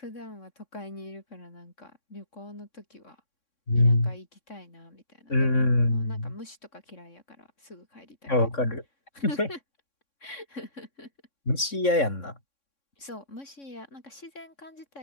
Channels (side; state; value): right; late; 3.6 ms